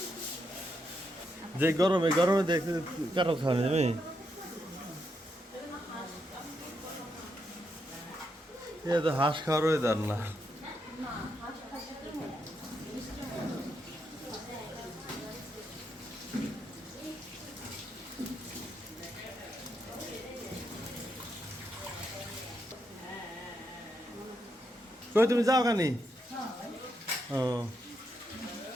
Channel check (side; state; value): both; normal; correlation 0.81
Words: যে গরমে গরমে দেখতে কাটা খাওয়া যাবে এ তো হাঁস খাওয়ার ওয়েদার না কই তুমি যাও কানি ও